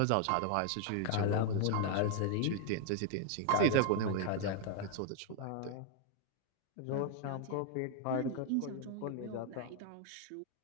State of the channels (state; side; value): different; both; correlation 0.00